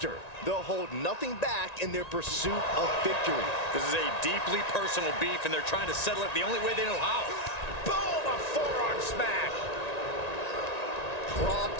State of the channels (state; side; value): late; right; 1.9 ms